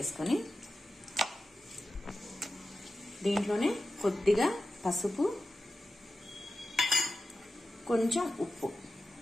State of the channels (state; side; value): normal; both; correlation 0.91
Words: దీంట్లోనే కొద్దిగా పసుపు, కొంచెం ఉప్పు,